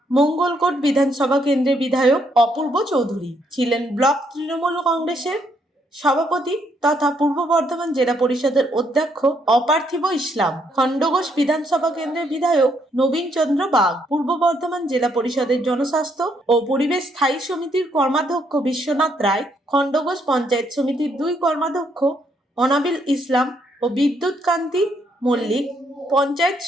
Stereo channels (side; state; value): both; normal; correlation 0.72